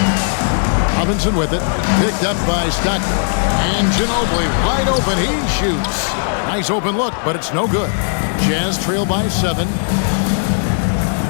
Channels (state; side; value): silent; right; digital silence